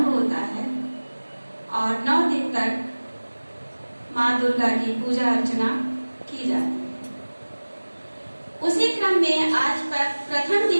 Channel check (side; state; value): both; inverted; correlation -1.00